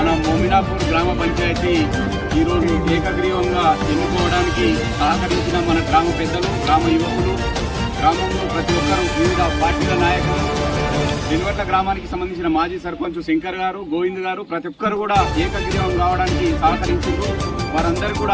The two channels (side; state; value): both; identical; correlation 1.00